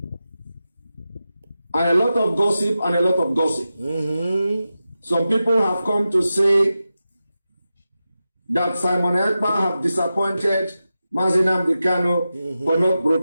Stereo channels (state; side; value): inverted; both; correlation -0.92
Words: And a lot of gossip and a lot of gossip. Some people have come to say that Simon Ekpa have disappointed Mazi Nnamdi Kanu for not